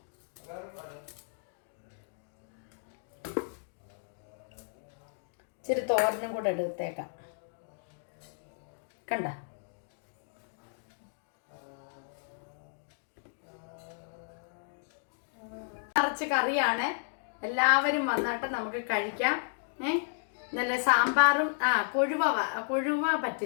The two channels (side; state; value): right; silent; digital silence